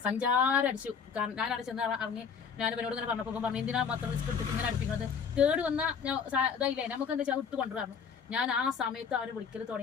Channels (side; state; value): right; quieter; 6.4 dB